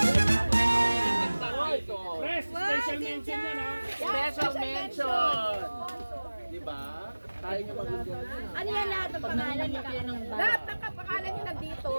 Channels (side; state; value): both; inverted; correlation -1.00